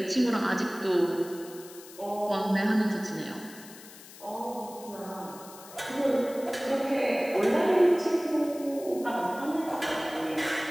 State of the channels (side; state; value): left; noise; hiss, 18 dB below the sound